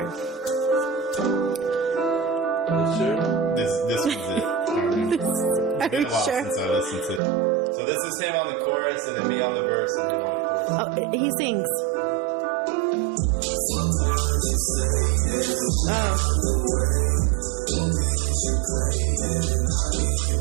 This was it. Are you sure? Since I listened to it. So this is him on the chorus, and then me on the verse, and him on the chorus. Oh, he sings.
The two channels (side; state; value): left; drops out; at 7.2 s